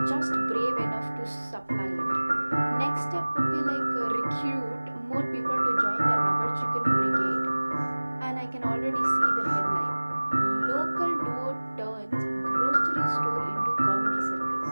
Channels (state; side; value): inverted; both; correlation -1.00